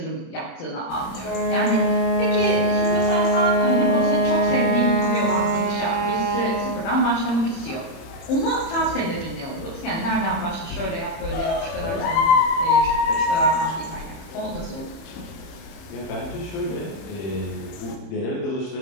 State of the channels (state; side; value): late; right; 31 ms